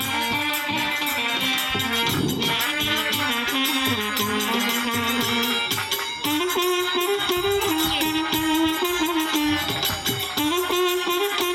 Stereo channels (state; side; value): identical; both; correlation 1.00